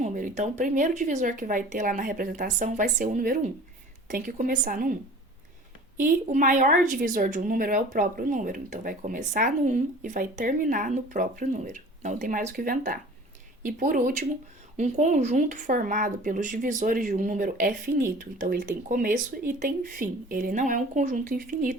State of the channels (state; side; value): normal; both; correlation 0.44